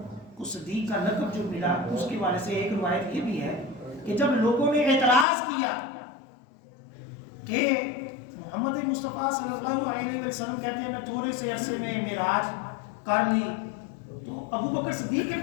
کو صدیق کا لقب جو ملا، اس کے بارے سے ایک روایت یہ بھی ہے کہ جب لوگوں نے اعتراض کیا کہ محمد مصطفیٰ صلی اللہ علیہ وسلم کہتے ہیں میں تھوڑے سے عرصے میں معراج کر لی، تو ابو بکر صدیق کے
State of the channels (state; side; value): drops out; right; at 5.2 s